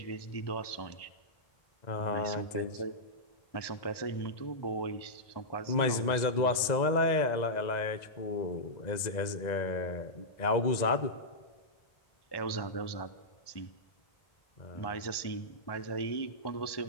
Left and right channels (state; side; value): late; right; 1.9 ms